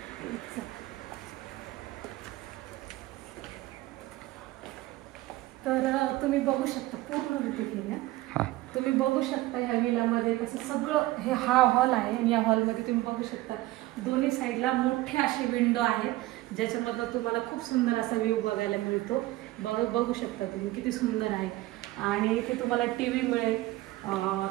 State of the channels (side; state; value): left; quieter; 18.1 dB